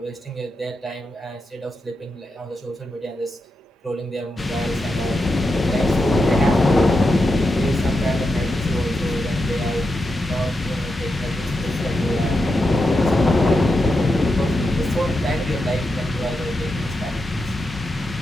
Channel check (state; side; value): normal; both; correlation 0.87